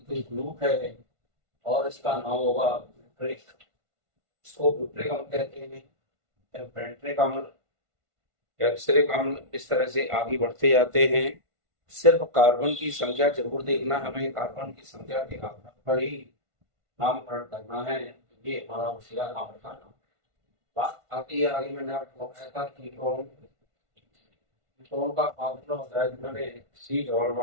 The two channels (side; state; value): left; late; 1.5 ms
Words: ग्रुप है और इसका नाम होगा ब्यूट्रिक। इसको ब्यूट्रिक अम्ल कहते हैं। पेंट्रिक अम्ल, कैप्सरिक अम्ल, इस तरह से आगे बढ़ते जाते हैं। सिर्फ कार्बन की संख्या जरूर देखना, हमें कार्बन की संख्या के आधार पर ही नामकरण करना है। ये हमारा होशियार नाम का नाम। बात आती है आगे, मैंने आपको बताया था कीटोन। कीटोन का फार्मूला होता है जिसमें C डबल